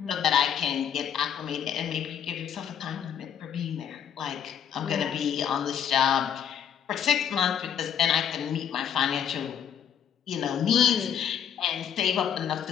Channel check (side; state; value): right; quieter; 8.7 dB